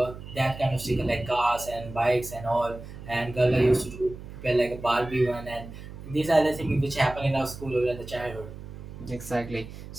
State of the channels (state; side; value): noise; right; hum, 13 dB below the sound